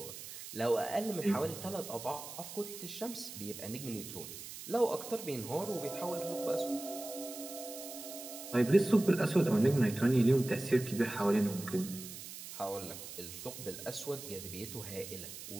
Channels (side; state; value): right; noise; hiss, 11 dB below the sound